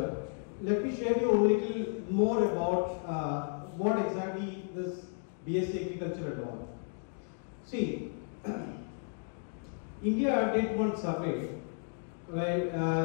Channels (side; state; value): right; silent; 56 dB below the other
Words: let me share you a little more about what exactly this BSc Agriculture and all. See, India did one survey, right?